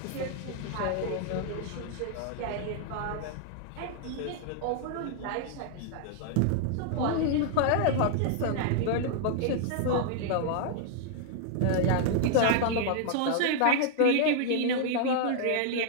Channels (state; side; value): different; both; correlation -0.01